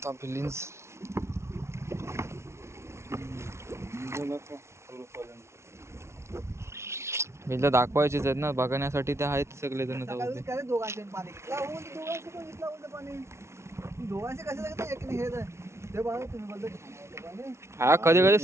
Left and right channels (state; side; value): late; left; 0.13 ms